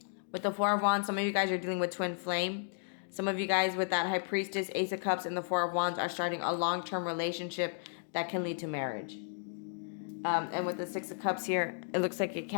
With the 4 of Wands, some of you guys are dealing with twin flame. Some of you guys with that High Priestess, Ace of Cups, and the 4 of Wands are starting a long-term relationship that can lead to marriage. And with the 6 of Cups here, it looks like it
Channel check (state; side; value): silent; right; digital silence